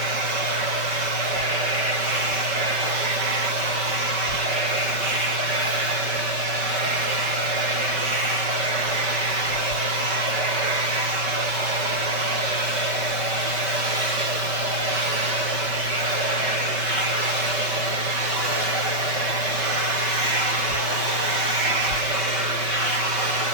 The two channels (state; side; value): late; left; 5.3 ms